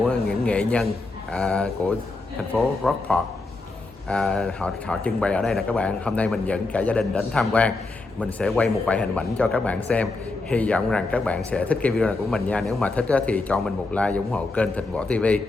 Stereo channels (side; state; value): right; quieter; 3.3 dB